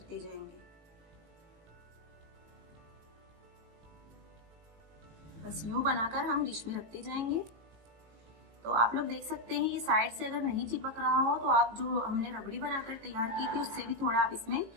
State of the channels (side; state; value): left; late; 18 ms